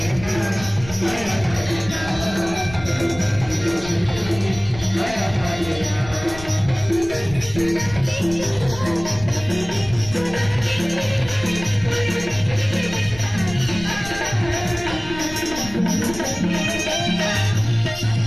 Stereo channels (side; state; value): left; noise; rumble, 14 dB below the sound